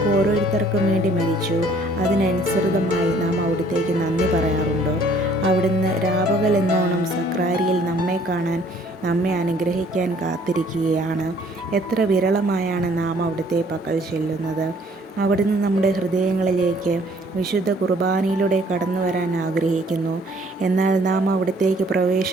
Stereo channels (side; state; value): both; normal; correlation 0.59